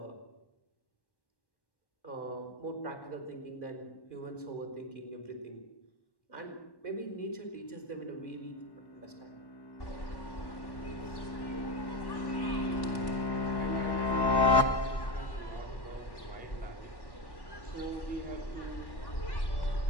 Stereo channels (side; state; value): right; late; 1.1 ms